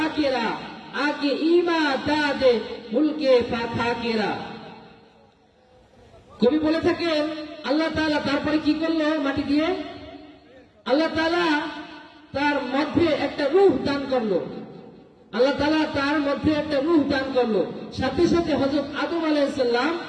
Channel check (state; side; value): identical; both; correlation 1.00